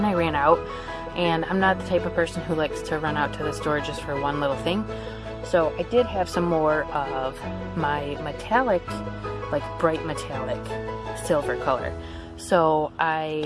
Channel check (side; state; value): both; identical; correlation 1.00